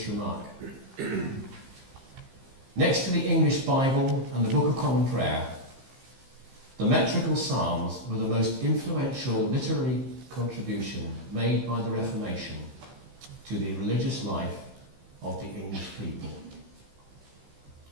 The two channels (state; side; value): late; left; 15 ms